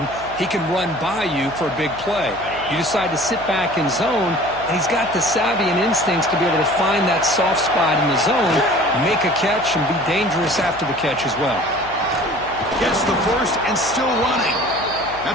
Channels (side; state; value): left; noise; hum, 18 dB below the sound